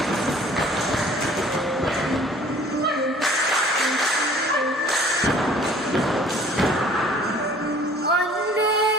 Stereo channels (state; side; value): normal; both; correlation 0.52